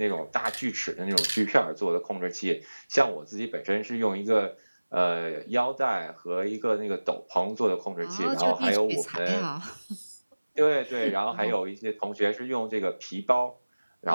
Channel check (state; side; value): inverted; both; correlation -1.00